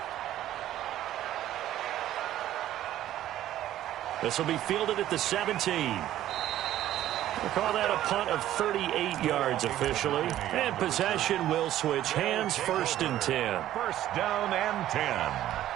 This will be fielded at the 17. We'll call that a punt of 38 yards officially. And possession will switch hands, 1st and 10. 1st down and 10.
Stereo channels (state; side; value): quieter; left; 13.0 dB